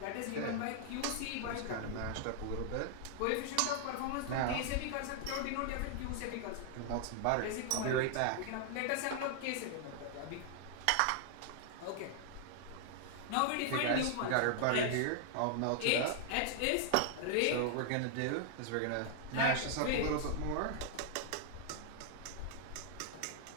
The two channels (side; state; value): both; different; correlation 0.00